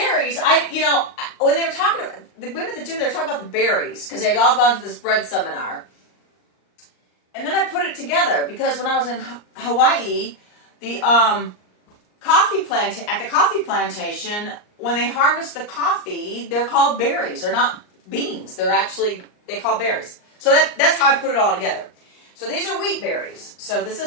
when they were talking, the women at the gym, they were talking about the berries because they'd all gone to this bread seminar. And then I put it together because when I was in Hawaii, the coffee plantation, when they harvest the coffee, they're called berries. They're not beans. They call berries. So that's how I put it all together. So these are wheat berries. So this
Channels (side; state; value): right; late; 39 ms